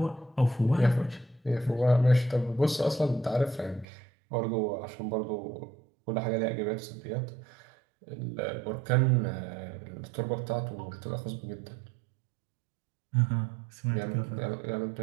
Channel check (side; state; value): left; drops out; at 3.9 s